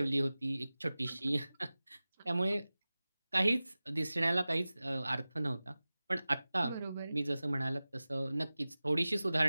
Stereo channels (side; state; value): both; inverted; correlation -0.97